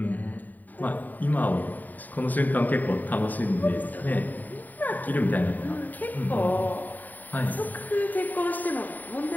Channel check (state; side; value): late; right; 0.084 ms